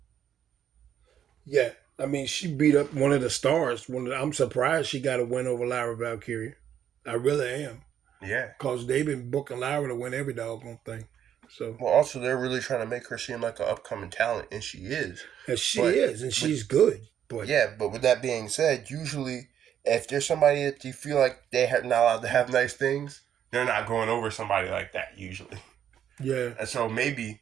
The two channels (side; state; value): left; quieter; 9.6 dB